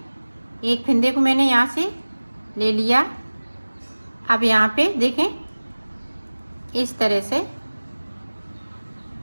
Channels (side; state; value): both; inverted; correlation -1.00